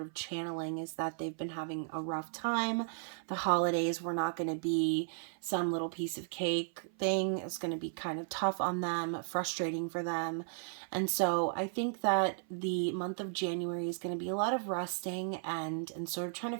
of channeling is that they've been having a rough time. The holidays were not going to be some little piece of cake thing. It's going to be kind of tough on them, frustrating for them. And so I think that the month of January is going to be a lot of resting and sort of trying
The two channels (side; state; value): left; silent; 54 dB below the other